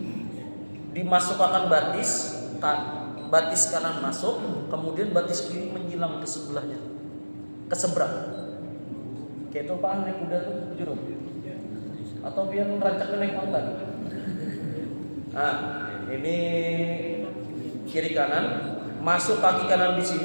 Dimasukkan batis, batis kanan masuk, kemudian batis kiri menyilang ke sebelahnya, ke seberang. Kayak itu apaan naik kuda tuh, jurung? Atau biar merancak naik onta? Nah, ini kiri kanan, masuk kaki kanan di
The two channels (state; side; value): inverted; both; correlation -1.00